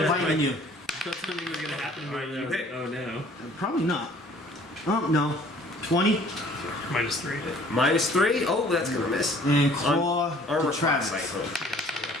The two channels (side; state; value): both; normal; correlation 0.54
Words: biting you. Thought something was gonna happen to me. You hit. Oh no. Probably not. Oh, no. 20. -3. -3? Oh, that's gonna miss. And claw Armor to class Travis. cycle.